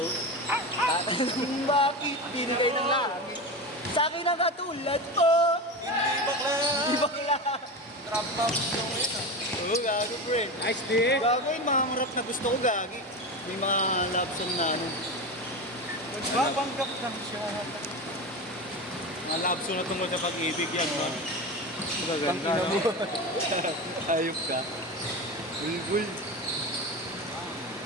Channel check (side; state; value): both; normal; correlation 0.23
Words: Tatanong bakit pinagay ng langit Sa akin ang katulad ko. Hindi bakla. Di bakla. Trap top yung yun ah. Oo, gago pre. Nice di. Gago yung mga rap na gusto ko gagi. May mga love song na ano. Nagpapanggap lang siya. Mga love song na tungkol sa pag-ibig yan, man. Magaganda, no? Ayop ka. Bulbul.